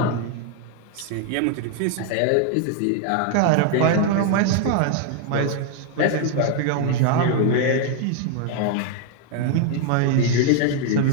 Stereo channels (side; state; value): both; different; correlation 0.00